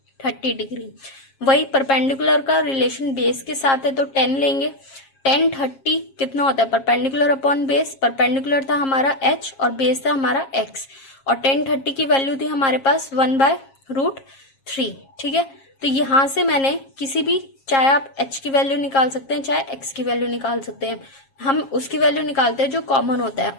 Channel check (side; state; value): right; late; 7.4 ms